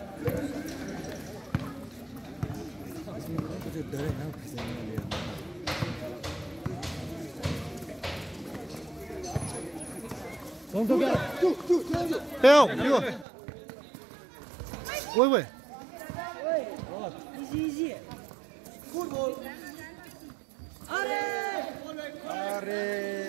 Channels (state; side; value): drops out; left; at 13.2 s